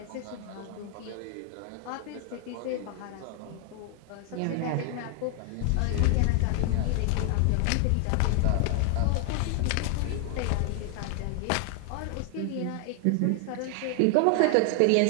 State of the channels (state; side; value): different; both; correlation 0.00